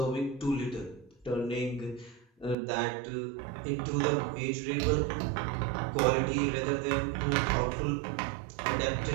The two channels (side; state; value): left; drops out; at 2.6 s